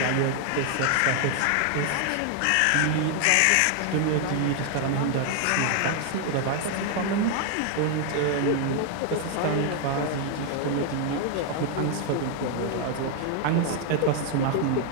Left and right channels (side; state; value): both; different; correlation 0.00